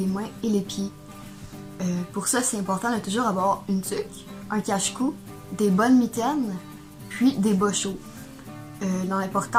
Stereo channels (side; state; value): both; identical; correlation 1.00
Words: mains et les pieds. Pour ça, c'est important de toujours avoir une tuque, un cache-cou, des bonnes mitaines, puis des bas chauds. Dans